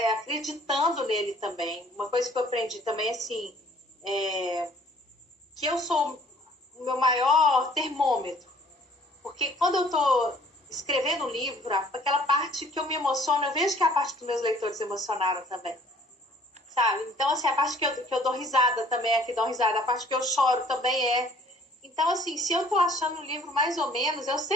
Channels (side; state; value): both; normal; correlation 0.56